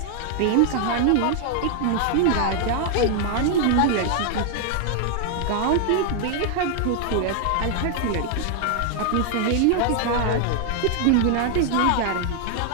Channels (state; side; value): different; both; correlation 0.00